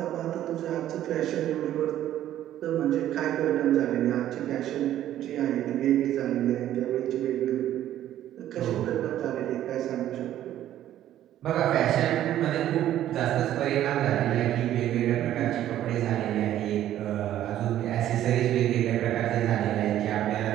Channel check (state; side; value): quieter; left; 12.3 dB